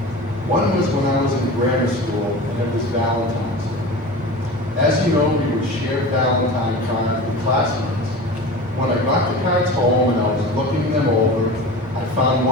One was when I was in grammar school, and it was Valentine's Day. As you know, we would share Valentine cards with classmates. When I got the cards home and I was looking them over, I found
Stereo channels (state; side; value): normal; both; correlation 0.33